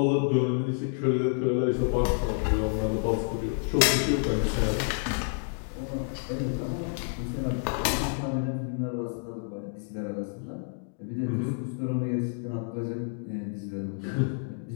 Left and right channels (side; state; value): right; silent; digital silence